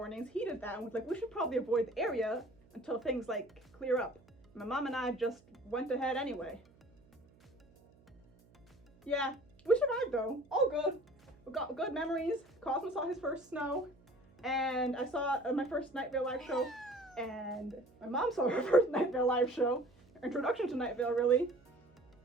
heeded that, and was like, we should probably avoid the area until things like clear up. My mom and I just went ahead anyway. Yeah, we survived though. All good. We got good memories. Cosmo saw his first snow, and I saw my first Night Vale live show, and my mom saw her first Night Vale live show. Introduction to Night Vale, really.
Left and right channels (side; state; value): right; noise; hum, 28 dB below the sound